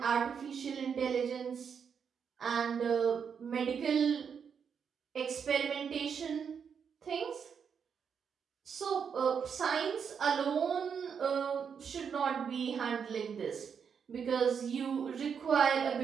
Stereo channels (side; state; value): left; quieter; 6.9 dB